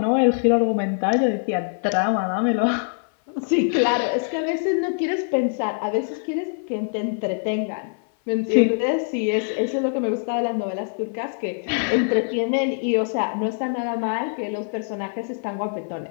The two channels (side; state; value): right; silent; 58 dB below the other